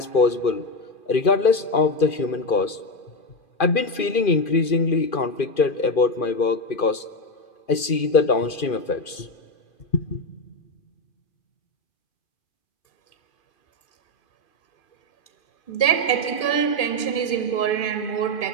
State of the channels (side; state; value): right; late; 2.5 ms